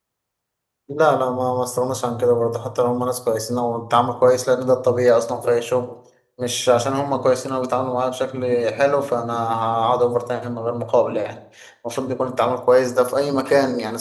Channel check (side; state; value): both; identical; correlation 1.00